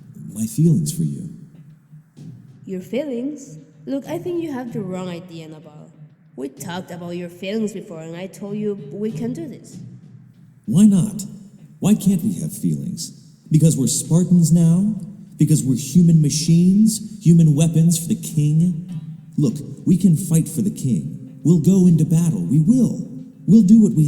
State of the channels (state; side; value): identical; both; correlation 1.00